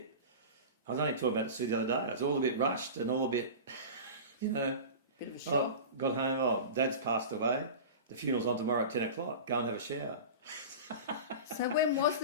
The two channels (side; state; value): both; inverted; correlation -0.31